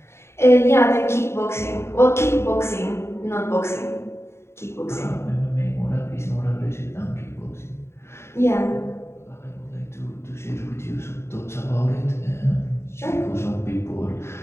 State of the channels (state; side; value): late; right; 0.13 ms